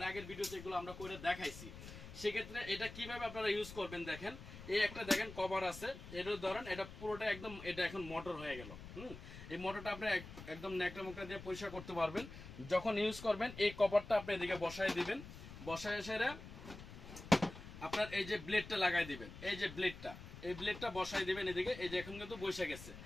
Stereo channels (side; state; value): left; noise; rumble, 13 dB below the sound